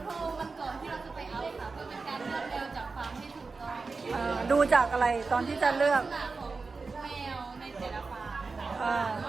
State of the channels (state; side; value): quieter; left; 4.2 dB